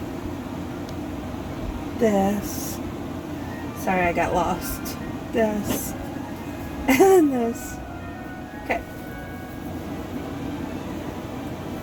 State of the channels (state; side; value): identical; both; correlation 1.00